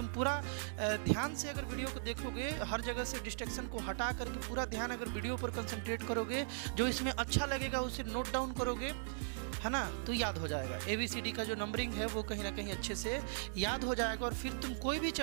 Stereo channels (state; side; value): silent; left; 52 dB below the other